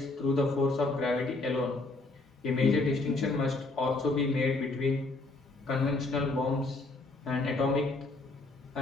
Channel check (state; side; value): quieter; right; 3.2 dB